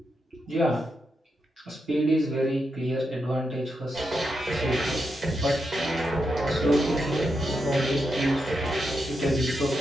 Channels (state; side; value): normal; both; correlation 0.84